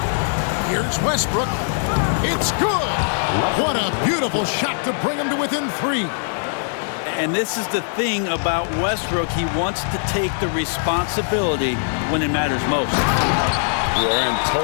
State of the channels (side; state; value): right; silent; 57 dB below the other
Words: Here's Westbrook. It's good. What a beautiful shot to bring him to within 3. And this is the thing about Westbrook. He wants to take the responsibility when it matters most. We're in